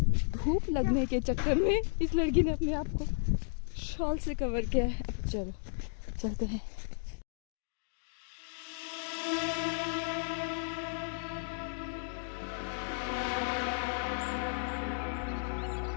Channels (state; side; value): silent; right; digital silence